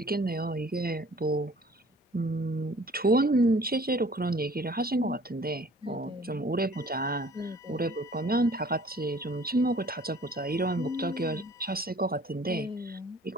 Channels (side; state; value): both; normal; correlation 0.53